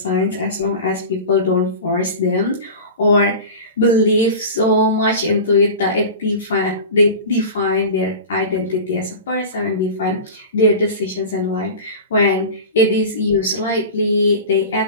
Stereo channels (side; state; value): both; inverted; correlation -0.32